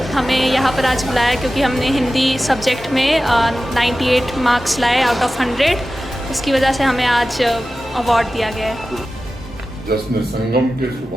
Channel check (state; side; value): normal; both; correlation 0.94